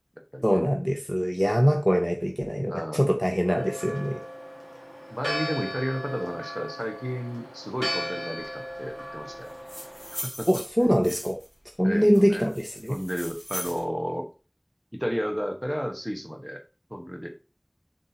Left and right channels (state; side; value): identical; both; correlation 1.00